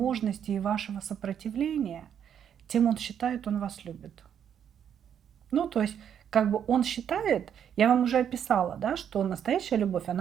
и вашего сопротивления, тем он считает, он вас любит. Ну, то есть, как бы он считает, я вам уже описала, да, что настоящая любовь,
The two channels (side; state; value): left; quieter; 8.8 dB